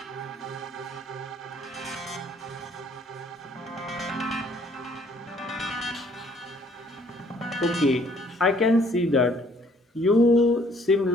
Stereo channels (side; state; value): both; normal; correlation 0.62